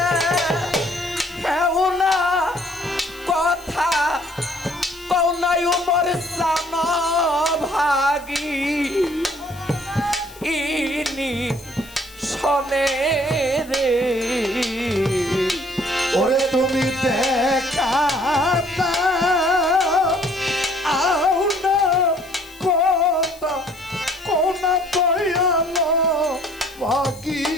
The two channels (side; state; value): left; noise; hiss, 23 dB below the sound